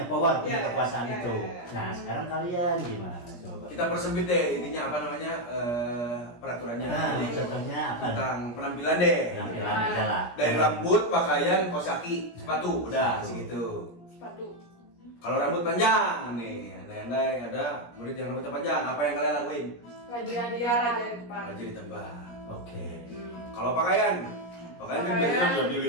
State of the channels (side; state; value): right; late; 17 ms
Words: power, punya Ya, kekuasaan ya, itu. ya, ya. Nah, sekarang kalian gimana coba? Kita persempit deh intinya apa namanya peraturannya. Nah, Jadi, contohnya apa? tentang penampilan deh. Penampilan aja lah. Dari rambut, pakaian, kaos kaki, sepatu, udah segitu. Sepatu. Kalau rambut panjang nih, andai-andai ada murid yang rambutnya panjang, apa yang kalian lakuin? Raja di Dia depan. raja di depan. Aja ditebak. Oke. Kalau pakaian kan Pakaian. biasanya udah